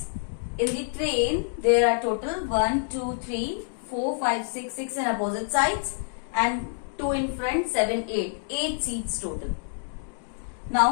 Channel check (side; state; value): right; silent; digital silence